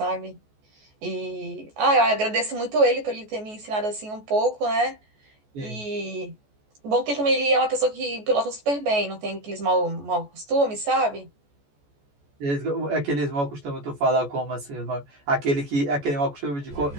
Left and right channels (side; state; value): left; late; 14 ms